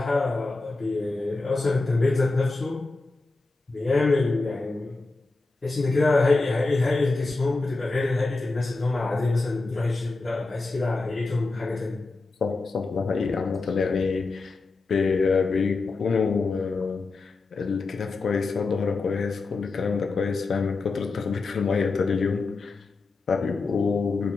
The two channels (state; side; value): quieter; right; 3.6 dB